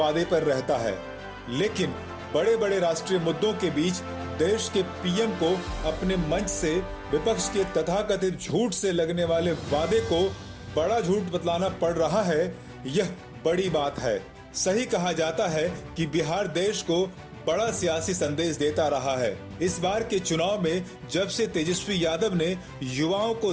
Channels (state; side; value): identical; both; correlation 1.00